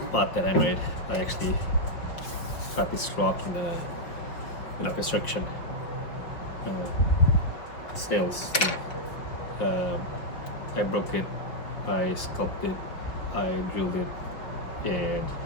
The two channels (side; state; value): right; late; 5.4 ms